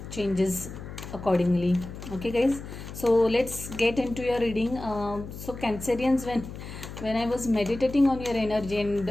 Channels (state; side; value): noise; left; hum, 11 dB below the sound